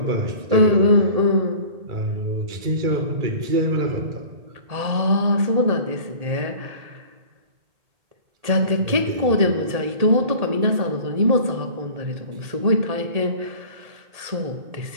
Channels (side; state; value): left; late; 1.8 ms